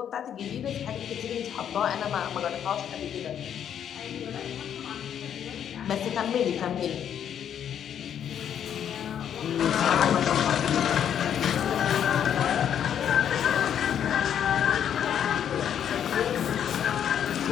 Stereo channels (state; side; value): quieter; right; 9.2 dB